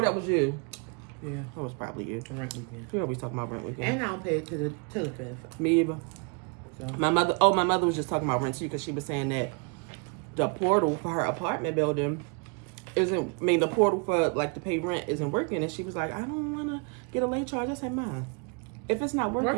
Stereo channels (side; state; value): left; quieter; 34.7 dB